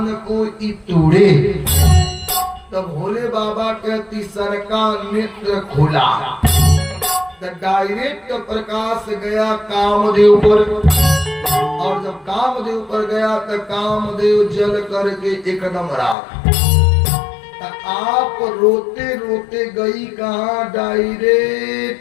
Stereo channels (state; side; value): drops out; right; at 16.2 s